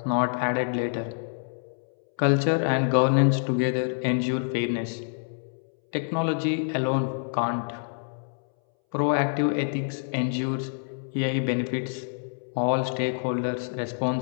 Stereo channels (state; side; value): silent; right; 60 dB below the other